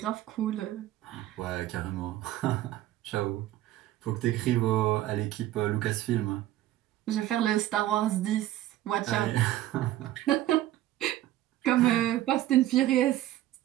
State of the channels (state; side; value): quieter; left; 14.1 dB